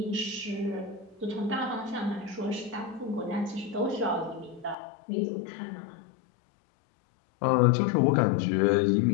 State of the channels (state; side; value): drops out; right; at 4.8 s